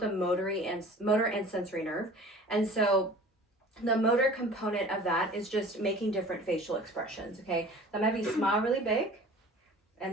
a motor and sensory nerve, and so the motor component of that is just making different facial expressions, okay? So I'm gonna have you smile really big,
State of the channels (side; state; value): both; normal; correlation 0.44